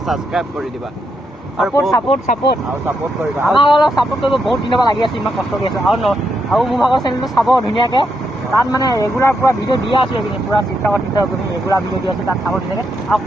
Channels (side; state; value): both; normal; correlation 0.81